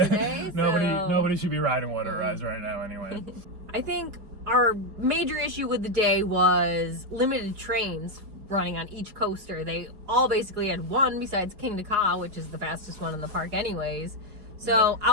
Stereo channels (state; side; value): late; left; 4.8 ms